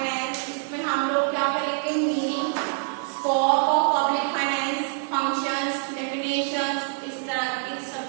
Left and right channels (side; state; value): left; silent; 58 dB below the other